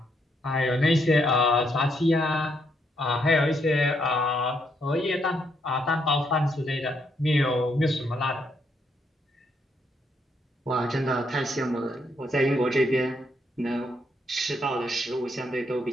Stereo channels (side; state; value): both; normal; correlation 0.75